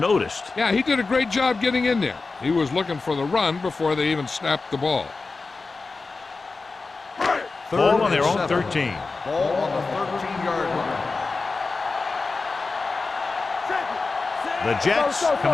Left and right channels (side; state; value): right; quieter; 4.0 dB